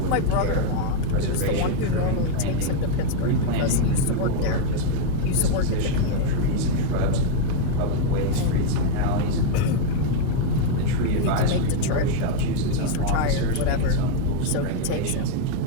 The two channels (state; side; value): different; both; correlation 0.00